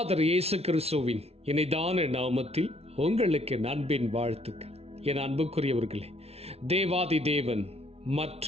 இயேசு கிறிஸ்துவின் இணைதான நாமத்தில் உங்களுக்கு அன்பின் வாழ்த்துக்கள். என் அன்புக்குரியவர்களே, தேவாதி தேவன்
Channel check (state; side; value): late; left; 0.30 ms